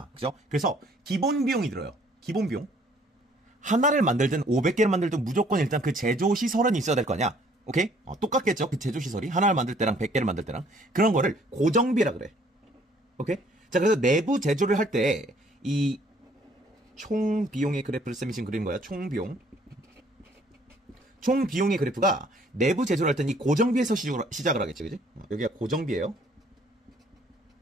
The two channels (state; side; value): normal; both; correlation 0.60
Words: 그죠? 그래서, 기본 비용이 들어요. 기본 비용. 하나를 만들든 500개를 만들든 무조건 일단 그 제조 시설은 있어야 될 거 아니야. 오케이? 똑같겠죠? 그 제조 시설이. 하나를 만들 때랑 100개를 만들 때랑. 그런 거를 고정비라 그래. 오케이? 자, 그래서 내부 제조를 할 때, 이, 총 비용의 그래프를 쌤이 지금 그린 거야. 총 비용. 총 비용의 그래프가 내부 제조를 할 때는 이 고정비에서 시작을 하겠지, 그지? 여기가 고정비예요.